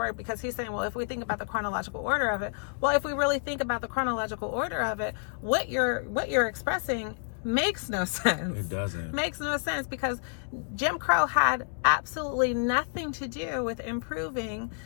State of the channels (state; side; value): silent; right; 58 dB below the other